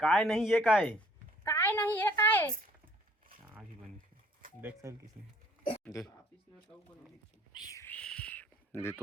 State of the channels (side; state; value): both; normal; correlation 0.58